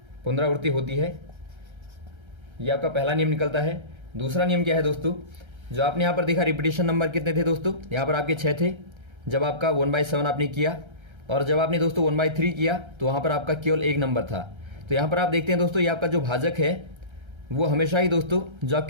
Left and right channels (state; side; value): late; left; 1.3 ms